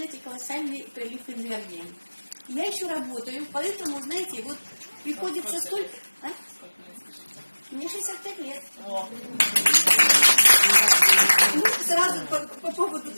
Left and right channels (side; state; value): both; inverted; correlation -1.00